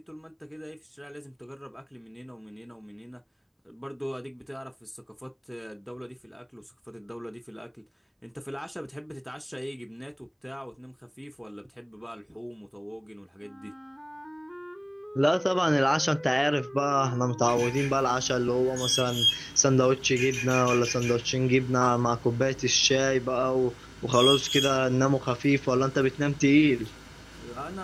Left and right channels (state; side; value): identical; both; correlation 1.00